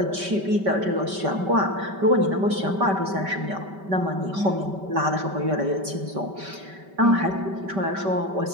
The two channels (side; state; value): left; late; 5.2 ms